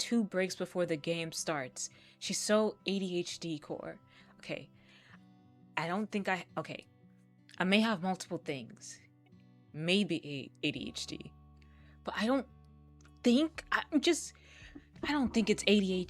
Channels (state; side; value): identical; both; correlation 1.00